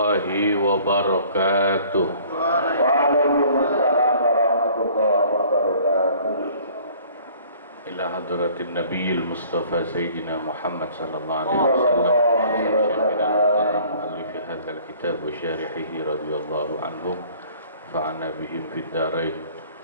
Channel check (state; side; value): inverted; both; correlation -0.53